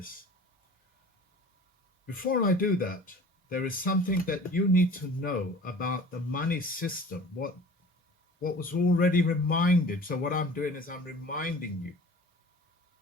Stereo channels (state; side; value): normal; both; correlation 0.43